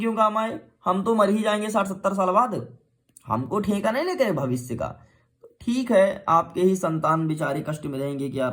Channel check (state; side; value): identical; both; correlation 1.00